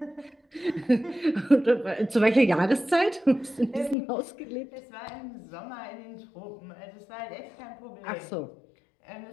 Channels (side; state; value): right; drops out; at 4.0 s